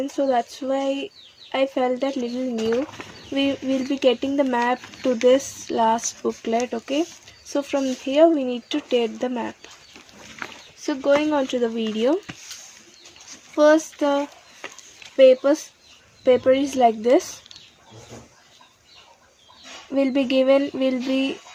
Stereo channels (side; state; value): both; identical; correlation 1.00